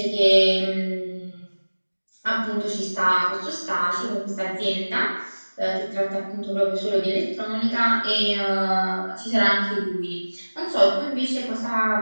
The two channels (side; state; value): both; inverted; correlation -1.00